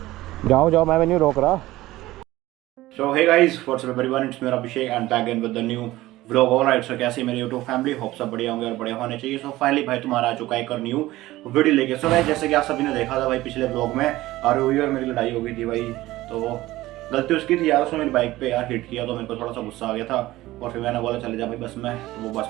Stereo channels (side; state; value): left; quieter; 17.2 dB